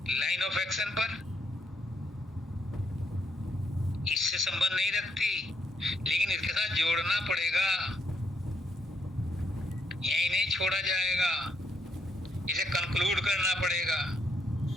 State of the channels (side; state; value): both; normal; correlation 0.75